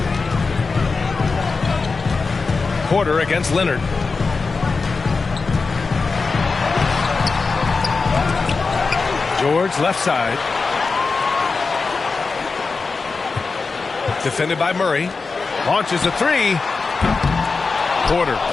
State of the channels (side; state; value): right; quieter; 4.3 dB